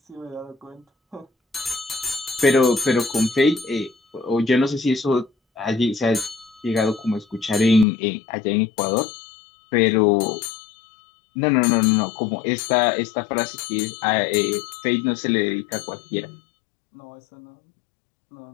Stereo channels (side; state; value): right; drops out; at 7.9 s